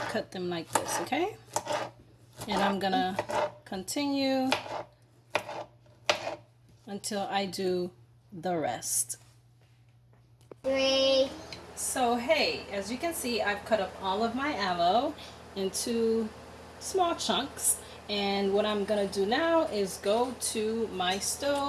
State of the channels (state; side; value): identical; both; correlation 1.00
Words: cut them like this, okay? And I'm gonna continue until I do the rest. 3. So hey, as you can see, I've cut up all of my aloe into small chunks, and what I'm gonna do now is go to my